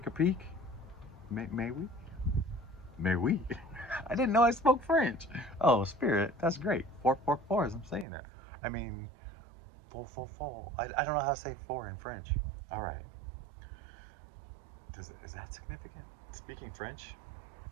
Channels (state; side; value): drops out; left; at 8.1 s